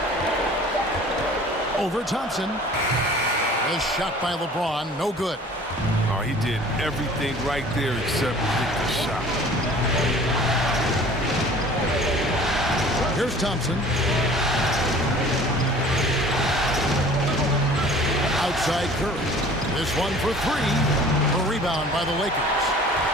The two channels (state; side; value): normal; both; correlation 0.48